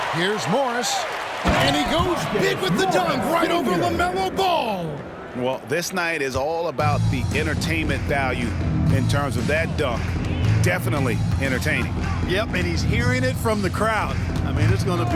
Here's Morris. And he goes big with the dunk right over LaMelo Ball. Well, this night is all about the entertainment value in terms of that dunk. Definitely entertaining. Yep, and he's hearing it from the crowd. I mean, it's going to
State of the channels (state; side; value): identical; both; correlation 1.00